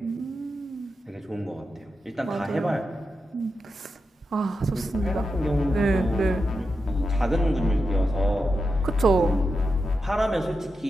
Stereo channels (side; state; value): both; normal; correlation 0.88